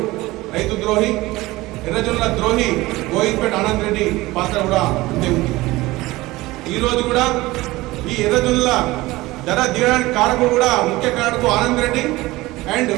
రైతు ద్రోహి, ఎర్రజొన్నల ద్రోహి గోవింద్పేట ఆనంద్ రెడ్డి పాత్ర కూడా అంతే ఉంది. ఈరోజు కూడా ఈ ఎర్రజొన్నల ధర దిగడానికి కారకుడు కూడా ముఖ్య కారకుడు ఆనంద్ రెడ్డి అండ్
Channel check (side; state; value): left; quieter; 19.5 dB